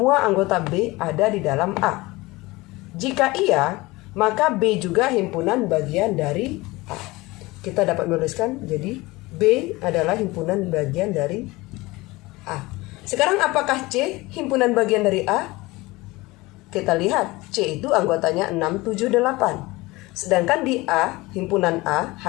anggota B ada di dalam A. Jika iya, maka B juga himpunan bagian dari A. Kita dapat menuliskan jadi B adalah himpunan bagian dari A. Sekarang apakah C himpunan bagian dari A? Kita lihat C itu anggotanya 6, 7, 8. Sedangkan di A, himpunan A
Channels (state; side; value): quieter; right; 21.4 dB